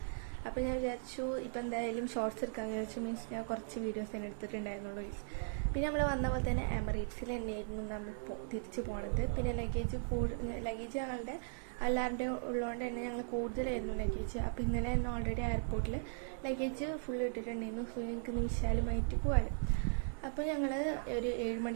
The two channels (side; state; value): left; silent; digital silence